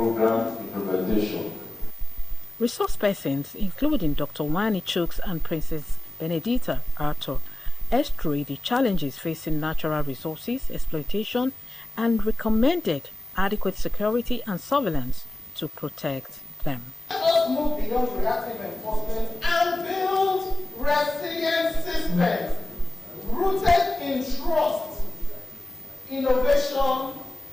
implementation. Resource persons, including Dr. Wani Chooks and Princess Benedita Arthur, eschewed the challenges facing natural resources exploitation and recommended adequate security and surveillance to protect them. Let us move beyond reactive enforcement and build resilient systems rooted in trust, innovation,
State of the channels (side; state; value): both; normal; correlation 0.97